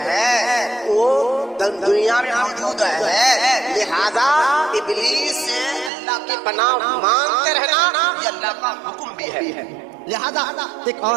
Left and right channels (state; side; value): drops out; left; at 5.9 s